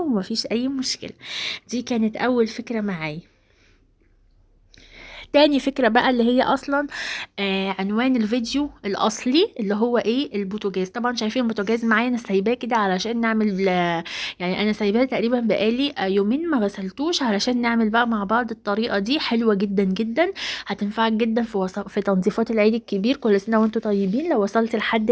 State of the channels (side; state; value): both; identical; correlation 1.00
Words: اي مشكله. دي كانت اول فكره معايا. تاني فكرة بقى اللي هي أصلا عنوان الفيديو الأصلي اللي هو ايه، البوتاجاز. طبعا شايفين البوتاجاز معايا، أنا سايباه كده علشان نعمل يعني أنا سايباه تقريبا بقالي يومين ما غسلتوش، علشان نعمل بقى مع بعض الطريقة دي. حلوة جدا جدا، هتنفعك جدا في تنظيفات العيد الكبير. كل سنة وانتوا طيبين. لو وصلت لحد